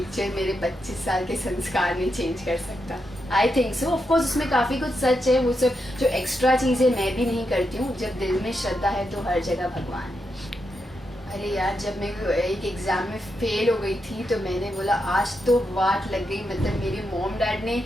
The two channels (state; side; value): normal; both; correlation 0.84